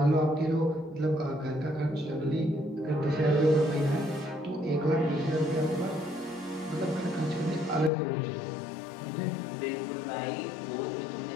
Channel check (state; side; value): drops out; right; at 7.9 s